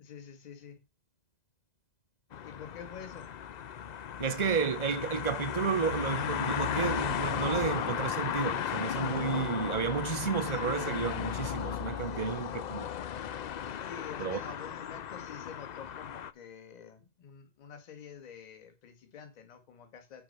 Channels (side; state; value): right; late; 2.0 ms